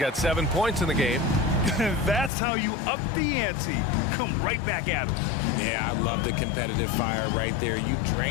7 points in the game. That's how you up the ante. Come right back at him. Yeah, I love the competitive fire right there. You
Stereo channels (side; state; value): right; drops out; at 2.3 s